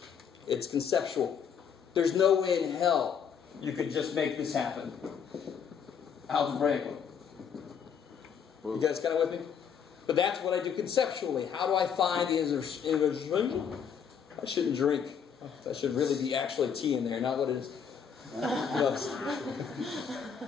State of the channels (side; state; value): right; quieter; 7.3 dB